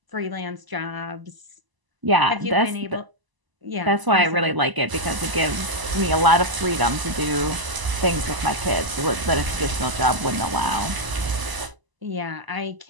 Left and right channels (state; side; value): late; left; 1.0 ms